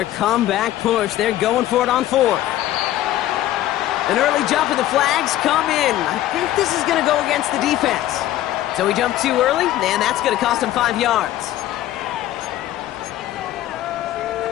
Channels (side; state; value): right; quieter; 13.8 dB